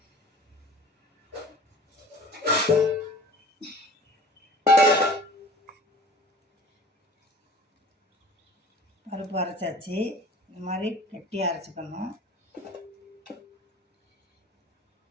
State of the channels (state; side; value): normal; both; correlation 0.44